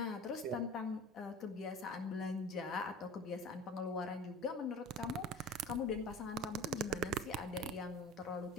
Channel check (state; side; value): normal; both; correlation 0.39